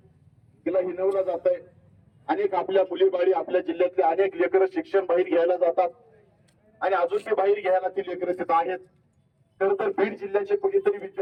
तिला हिनवलं जात आहे. अनेक आपल्या मुलीबाळी, आपल्या जिल्ह्यातले अनेक लेकरं शिक्षण बाहेर घ्यायला जातात आणि अजून ते बाहेर घ्यायला ती लेकरं तिथं आहेत. तर बीड जिल्ह्याचे कुणीतरी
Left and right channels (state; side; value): identical; both; correlation 1.00